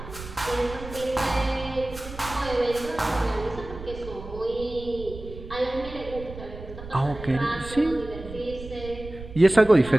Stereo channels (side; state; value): right; noise; rumble, 13 dB below the sound